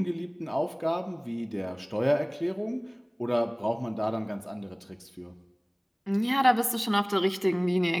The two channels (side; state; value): both; identical; correlation 1.00